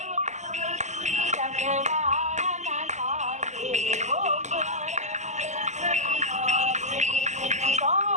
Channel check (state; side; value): late; left; 0.34 ms